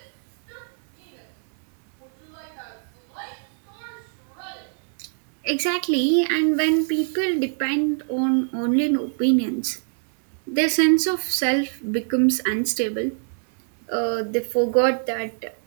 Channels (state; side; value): silent; left; 59 dB below the other